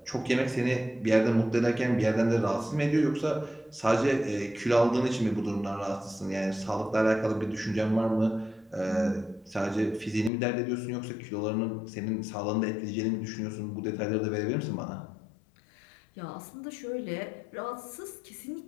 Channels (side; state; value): right; drops out; at 10.3 s